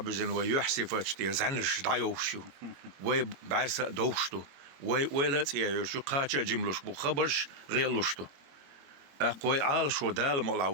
ويحسي فتشتي زنش دعيوشو وي بعرس دوشتو وي لا تيايوشو قاتشا جملوش بو خبرش غيلوشتو أقوي عال شو دال مولع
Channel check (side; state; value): left; late; 21 ms